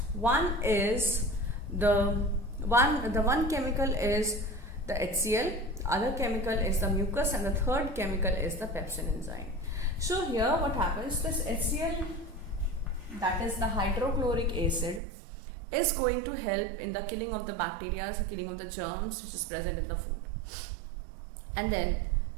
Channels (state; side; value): drops out; left; at 15.0 s